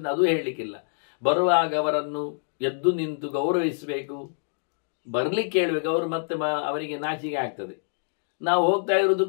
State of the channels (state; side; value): silent; right; digital silence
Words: ಅದು ಹೇಳಲಿಕ್ಕಿಲ್ಲ. ಬರುವಾಗ ಅವರನ್ನು ಎದ್ದು ನಿಂತು ಗೌರವಿಸಬೇಕು, ಬರ್ಲಿಕ್ಕೆ ಹೇಳ್ಬೇಕು. ಅವರು ಮತ್ತೆ ಅವರಿಗೆ ನಾಚಿಕೆ ಆಗ್ತದೆ. ನಾವು ಹೋಗ್ತಾ ಇರೋದು